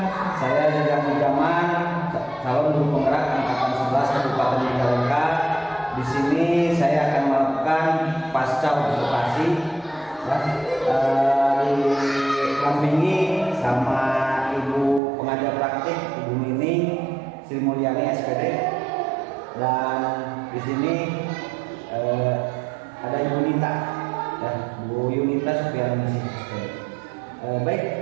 Saya Jajang Mujaman, calon guru penggerak angkatan 11 Kabupaten Majalengka. Di sini saya akan melakukan pasca observasi ya, didampingi sama Ibu pengajar praktik Ibu Nining Sri Mulyani SPD, dan di sini ada Ibu Nita, ya, Bu Yunita Supiani SPD. Baik,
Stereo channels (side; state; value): left; drops out; at 15.0 s